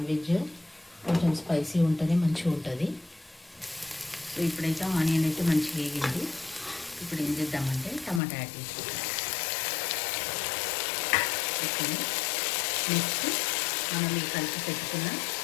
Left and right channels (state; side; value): drops out; right; at 8.2 s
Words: వెజ్ కొంచెం స్పైసీ ఉంటుంది, మంచిగా ఉంటుంది. సో ఇప్పుడైతే ఆనియన్ అయితే మంచిగా వేగింది. ఇప్పుడు ఏం చేద్దామంటే టమాటా యాడ్ చేసుకుంటాం. ఓకే, నెక్స్ట్ మనం ఈ కలిపి పెట్టుకున్న